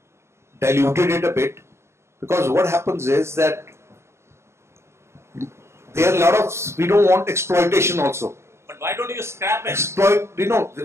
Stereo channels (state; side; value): late; left; 0.13 ms